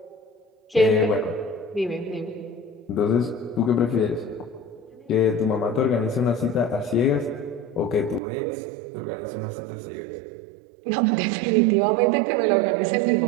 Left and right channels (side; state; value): left; drops out; at 8.2 s